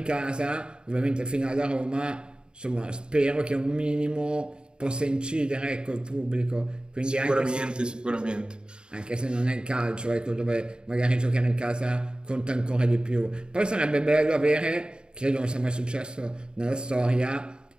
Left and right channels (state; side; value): late; left; 0.050 ms